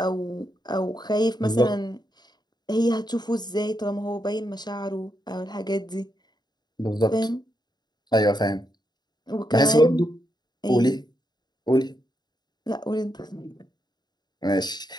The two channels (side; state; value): right; late; 0.20 ms